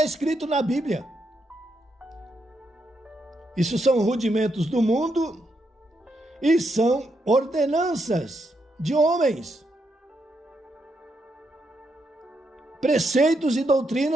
escrito na Bíblia. Isso são rudimentos do mundo e são ordenanças de homens. Preceitos e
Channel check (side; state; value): both; normal; correlation 0.80